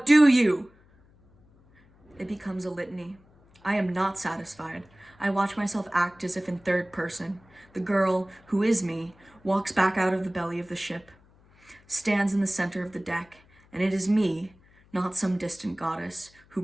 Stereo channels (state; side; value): noise; left; hum, 29 dB below the sound